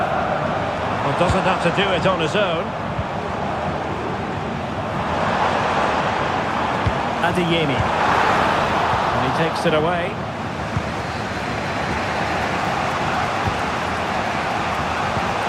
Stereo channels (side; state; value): both; identical; correlation 1.00